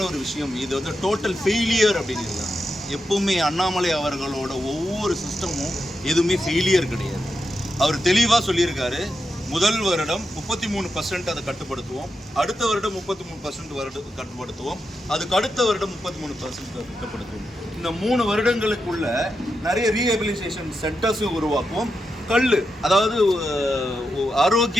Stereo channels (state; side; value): normal; both; correlation 0.87